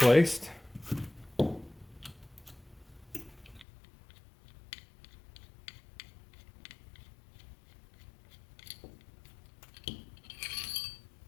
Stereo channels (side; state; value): right; drops out; at 3.7 s